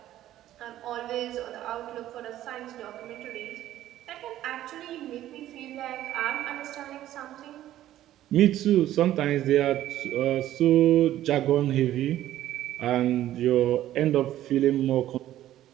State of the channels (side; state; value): left; quieter; 13.2 dB